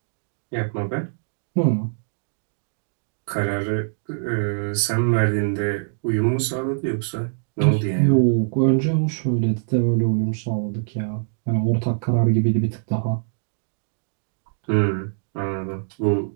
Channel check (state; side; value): silent; left; digital silence